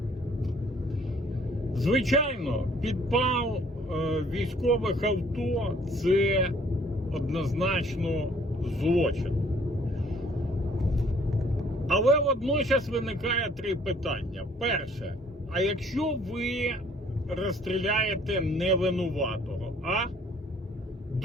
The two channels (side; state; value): both; normal; correlation 0.59